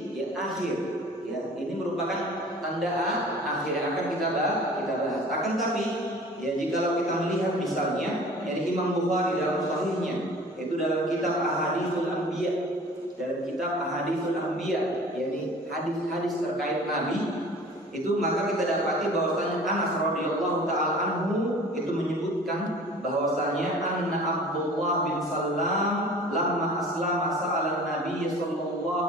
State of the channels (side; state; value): both; normal; correlation 0.45